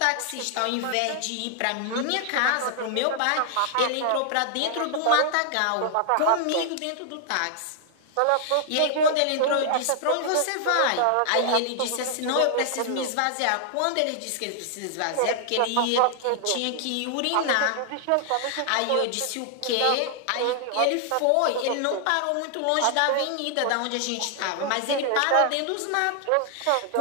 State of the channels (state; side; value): different; both; correlation 0.00